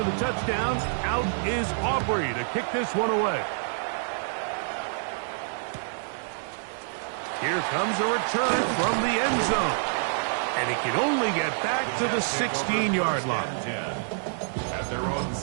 the touchdown, out is Aubrey to kick this one away. Here comes a return from the end zone. And he can only get back to the 16-yard line. At their own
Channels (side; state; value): left; silent; 60 dB below the other